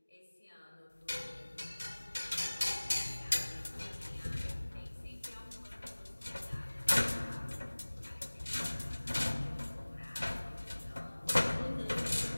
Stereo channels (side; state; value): both; inverted; correlation -1.00